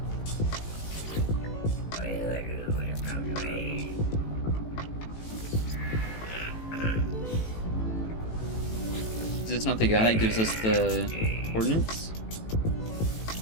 Is this not the guy that gives us the coordinates?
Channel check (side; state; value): right; late; 18 ms